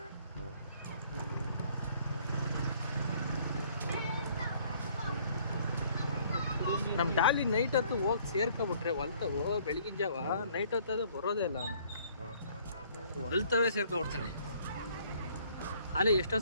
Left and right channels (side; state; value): both; inverted; correlation -0.60